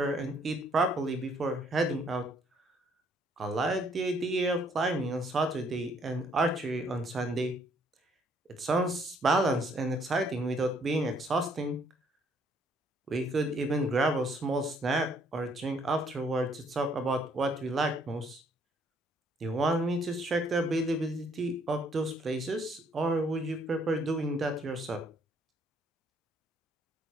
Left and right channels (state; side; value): normal; both; correlation 0.66